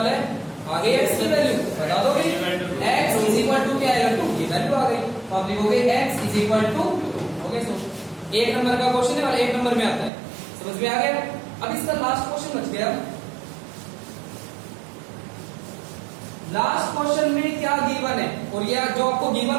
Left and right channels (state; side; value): drops out; left; at 10.1 s